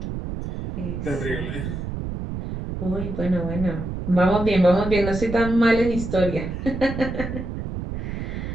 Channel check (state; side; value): noise; right; rumble, 5 dB below the sound